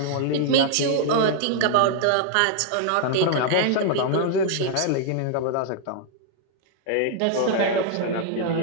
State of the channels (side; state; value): both; different; correlation 0.00